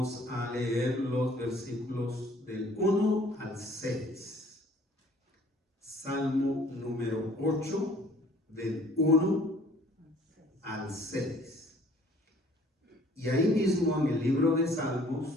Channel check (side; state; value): both; normal; correlation 0.56